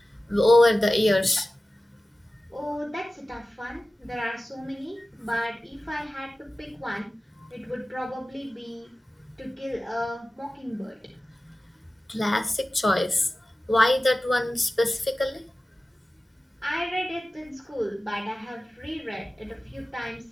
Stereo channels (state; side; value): normal; both; correlation 0.96